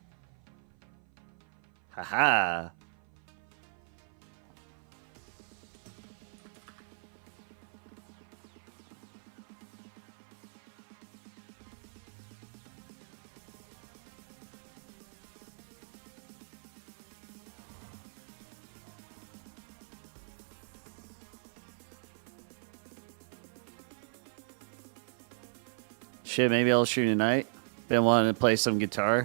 Haha. Shit, maybe I'll stream tonight. Been wanting to play some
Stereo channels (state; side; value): silent; left; 53 dB below the other